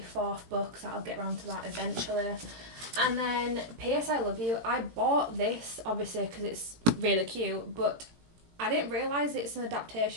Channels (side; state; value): left; late; 17 ms